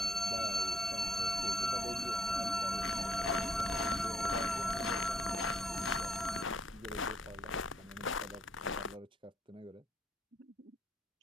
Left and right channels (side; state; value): both; normal; correlation 0.71